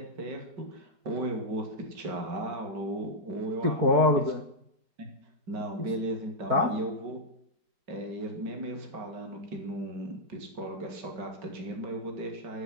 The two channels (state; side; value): late; left; 4.6 ms